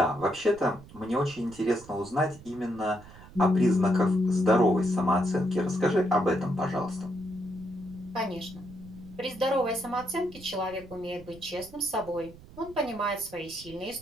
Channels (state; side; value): noise; right; rumble, 19 dB below the sound